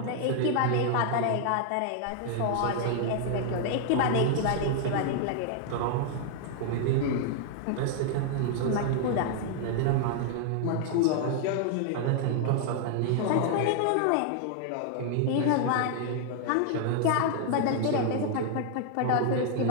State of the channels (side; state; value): both; different; correlation 0.00